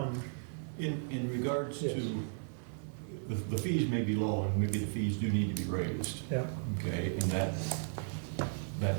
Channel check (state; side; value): silent; left; digital silence